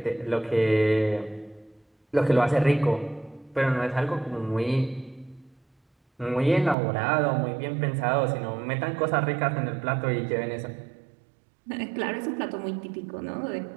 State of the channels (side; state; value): left; drops out; at 6.8 s